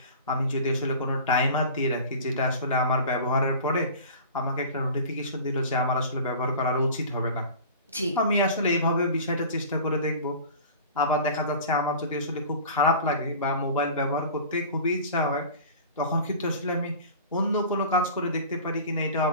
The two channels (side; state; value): both; inverted; correlation -0.39